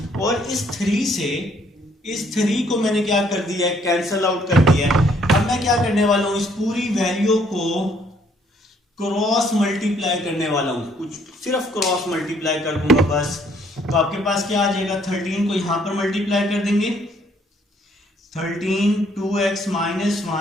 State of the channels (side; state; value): both; normal; correlation 0.65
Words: और इस 3 को मैंने क्या कर दिया है, कैंसल आउट कर दिया है। अब मैं क्या करने वाला हूं, इस पूरी वैल्यू को क्रॉस मल्टीप्लाई करने वाला हूं, कुछ सिर्फ क्रॉस मल्टीप्लाई कर दूंगा बस। तो आपके पास क्या आ जाएगा, 13 को यहां पर मल्टीप्लाई कर देंगे, 13 2x माइनस